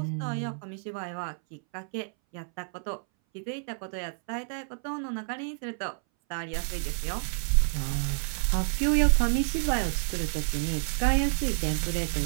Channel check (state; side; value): silent; left; 59 dB below the other